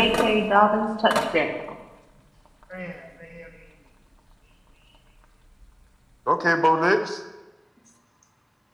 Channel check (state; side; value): identical; both; correlation 1.00